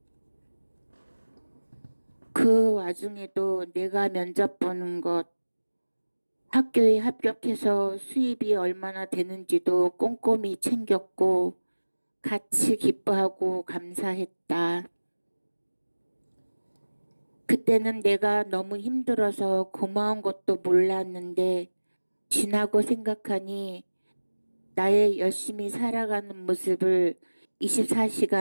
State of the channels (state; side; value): inverted; both; correlation -1.00